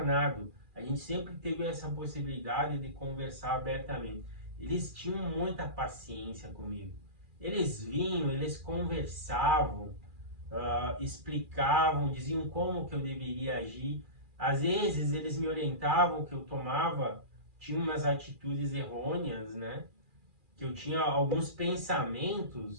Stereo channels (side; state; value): left; late; 2.4 ms